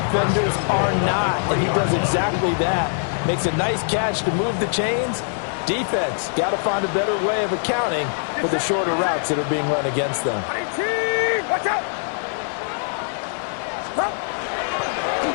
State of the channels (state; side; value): silent; right; 64 dB below the other